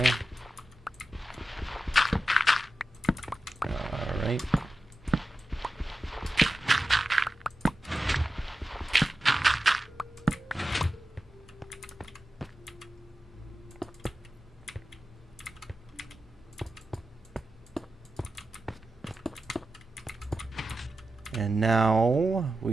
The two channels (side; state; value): both; normal; correlation 0.93